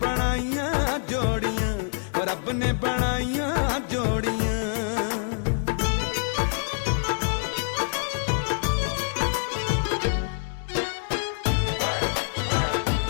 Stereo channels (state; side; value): silent; right; 61 dB below the other